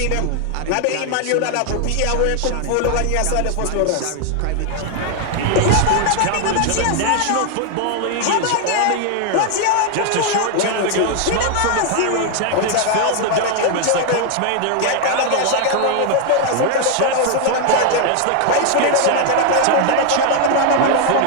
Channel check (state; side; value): different; both; correlation 0.00